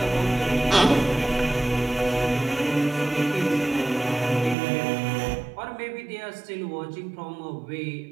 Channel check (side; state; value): left; drops out; at 4.5 s